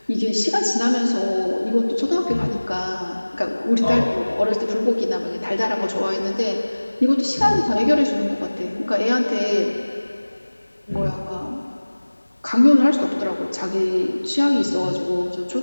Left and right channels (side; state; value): both; inverted; correlation -1.00